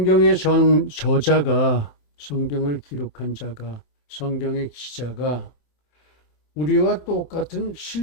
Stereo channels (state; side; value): late; right; 27 ms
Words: 저자가, 성경을 기록한 자가, 성경의 기자가 우리와 똑같은